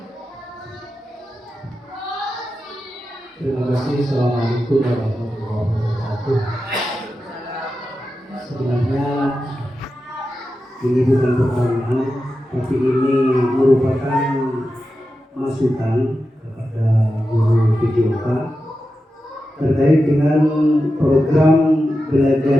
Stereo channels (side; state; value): both; normal; correlation 0.91